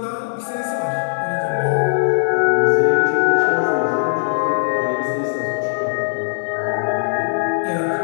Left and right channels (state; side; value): silent; right; 58 dB below the other